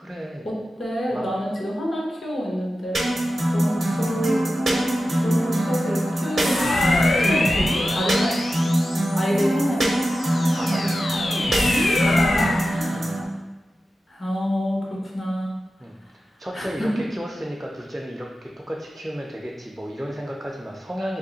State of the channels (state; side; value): normal; both; correlation 0.93